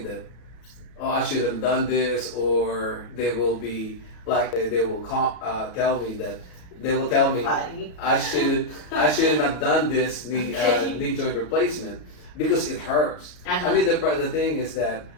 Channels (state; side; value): late; right; 33 ms